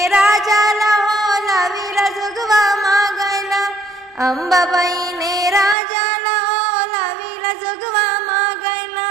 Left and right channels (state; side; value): drops out; left; at 5.8 s